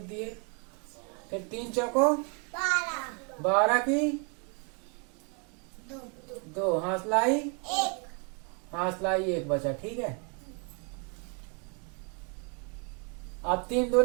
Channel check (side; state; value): left; quieter; 36.9 dB